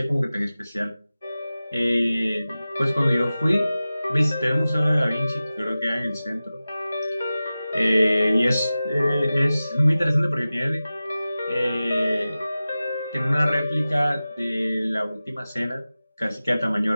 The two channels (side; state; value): both; inverted; correlation -0.96